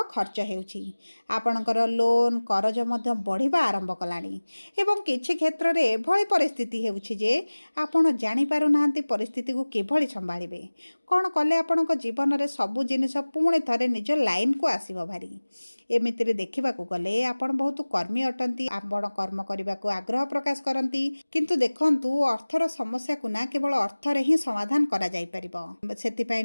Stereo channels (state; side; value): inverted; both; correlation -1.00